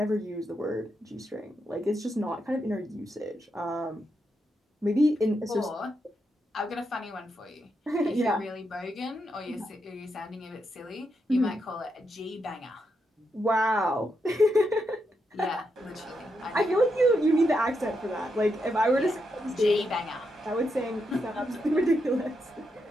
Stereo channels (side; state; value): both; normal; correlation 0.83